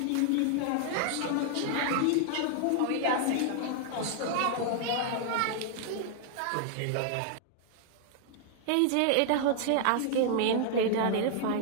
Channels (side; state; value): both; different; correlation -0.01